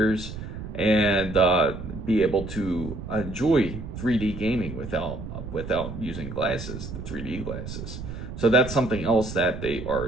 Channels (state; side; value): noise; right; rumble, 9 dB below the sound